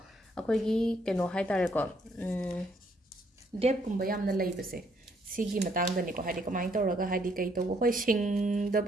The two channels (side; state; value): both; normal; correlation 0.69